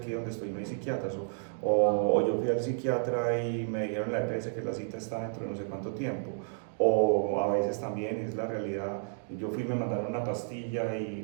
donde estoy no hay psiquiatras? O yo fui al psiquiatra y me dijeron en la EPS que la cita está dentro de no sé cuánto tiempo. O a veces también es la realidad, yo fui y me mandaron una pastilla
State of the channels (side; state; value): left; silent; digital silence